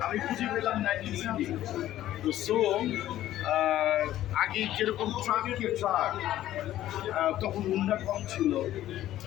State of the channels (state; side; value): quieter; right; 13.4 dB